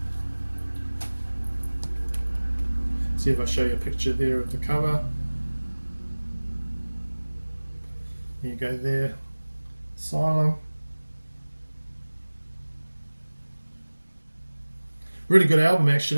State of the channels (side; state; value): both; inverted; correlation -1.00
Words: See if I show you a picture there of the cover. You go there, Asylum. Really good album